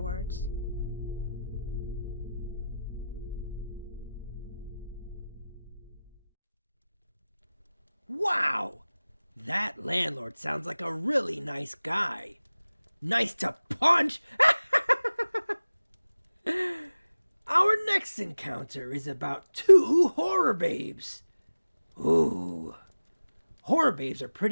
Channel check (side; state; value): both; inverted; correlation -0.96